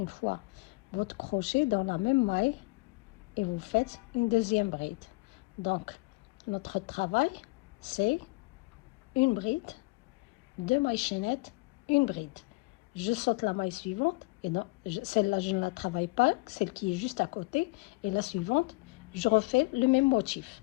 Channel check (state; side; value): quieter; right; 25.8 dB